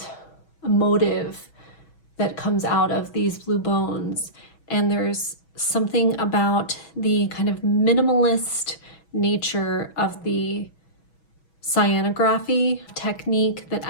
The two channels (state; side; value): late; right; 6.1 ms